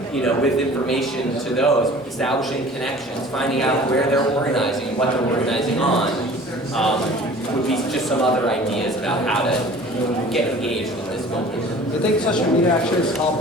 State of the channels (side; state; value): both; normal; correlation 0.46